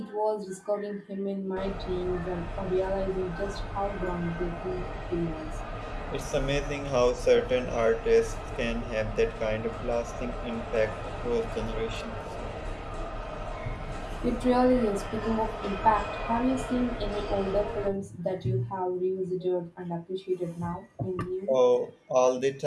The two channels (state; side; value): identical; both; correlation 1.00